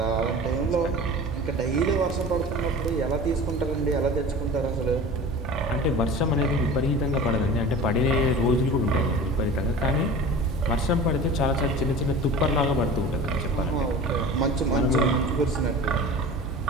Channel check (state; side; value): normal; both; correlation 0.37